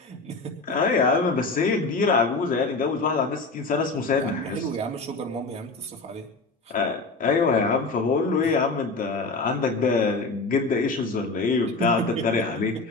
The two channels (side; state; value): right; quieter; 3.6 dB